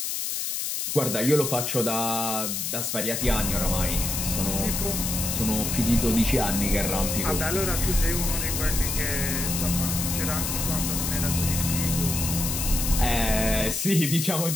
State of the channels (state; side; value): noise; left; hiss, 2 dB below the sound